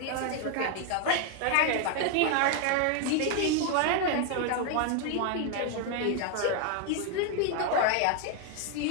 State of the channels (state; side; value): different; both; correlation 0.01